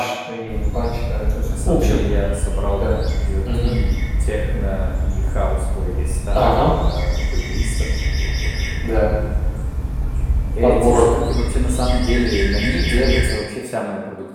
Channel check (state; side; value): identical; both; correlation 1.00